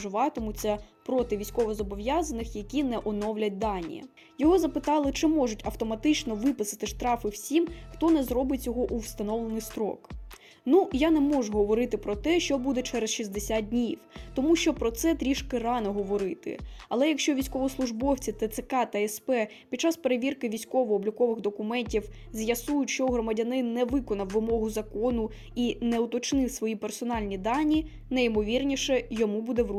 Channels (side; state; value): both; identical; correlation 1.00